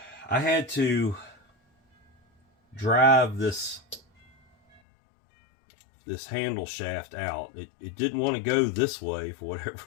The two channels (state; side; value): drops out; right; at 4.8 s